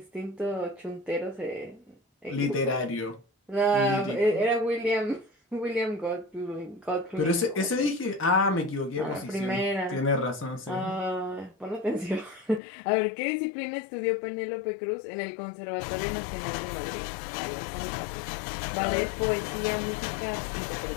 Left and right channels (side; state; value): right; drops out; at 12.6 s